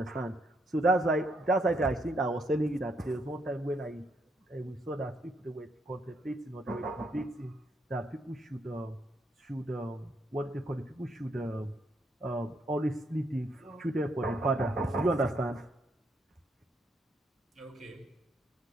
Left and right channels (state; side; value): normal; both; correlation 0.74